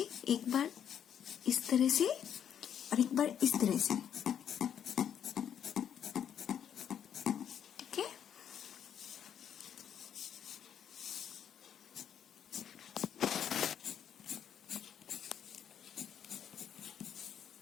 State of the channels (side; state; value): right; quieter; 9.0 dB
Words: एक बार इस तरह से और एक बार इस तरह से। ठीक है,